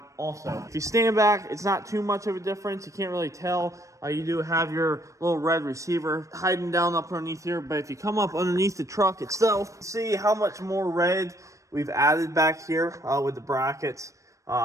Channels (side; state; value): left; late; 0.15 ms